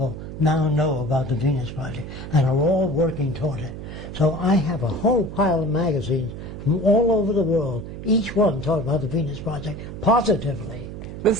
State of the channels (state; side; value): noise; right; hum, 10 dB below the sound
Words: now know about the Venus Project and are all working toward it. So I have a whole pile of magazines from all over the world, each one talking about the Venus Project positively. The